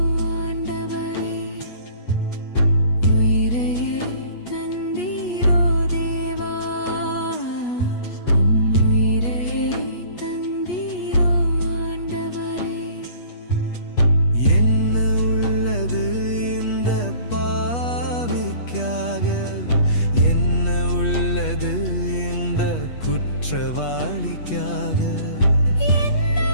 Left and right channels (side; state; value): right; late; 8.3 ms